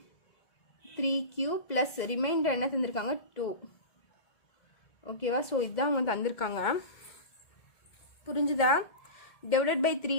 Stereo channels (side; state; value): right; late; 2.0 ms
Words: 3q plus reminder என்ன தந்திருக்காங்க 2. ஓகேவா? ஸோ இதுதான் அவங்க தந்திருக்காங்க. புரிஞ்சுதா? டிவைடட் பை